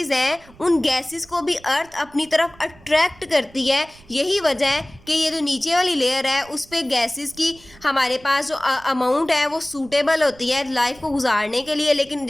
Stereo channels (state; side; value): noise; right; rumble, 24 dB below the sound